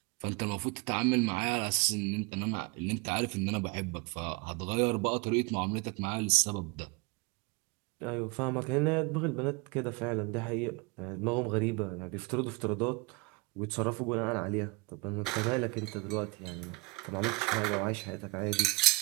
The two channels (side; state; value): left; quieter; 26.5 dB